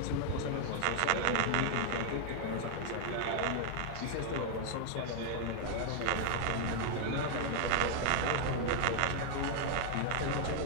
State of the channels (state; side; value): different; both; correlation 0.00